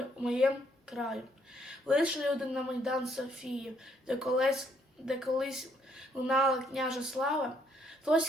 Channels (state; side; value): normal; both; correlation 0.69